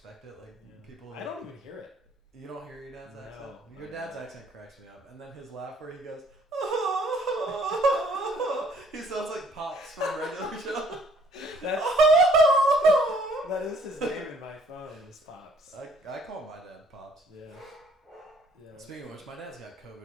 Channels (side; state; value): both; normal; correlation 0.60